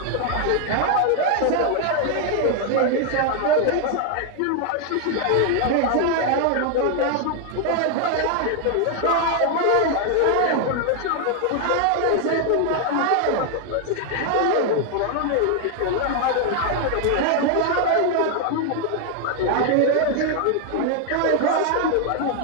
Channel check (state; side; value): different; both; correlation 0.00